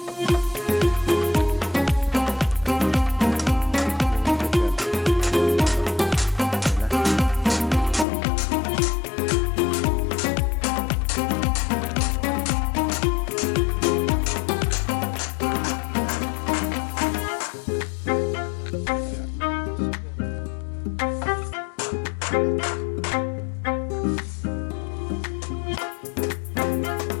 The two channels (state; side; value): drops out; right; at 8.1 s